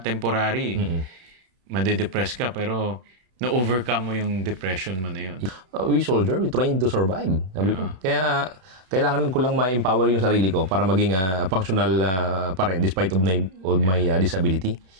temporary. Madedepress ka, pero na-overcome mo yung depression mo na yun. We soldier, we trained to survive. Sabi ko. Kaya, kailangan ko lang ma-empower yung sarili ko para maging functional pa rin despite of my disability.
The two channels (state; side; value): late; left; 32 ms